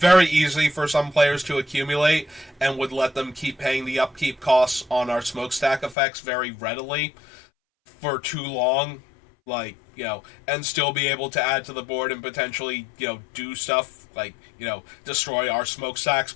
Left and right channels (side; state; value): right; drops out; at 6.0 s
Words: easy for some players to accumulate, and would let them keep paying the upkeep costs on our smokestack effects very readily for too long. Like, and still be able to add to the board and potentially, do stuff like, destroy our smokestacks